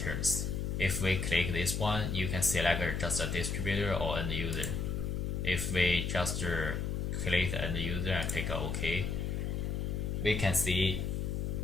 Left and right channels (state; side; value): noise; left; hum, 1 dB below the sound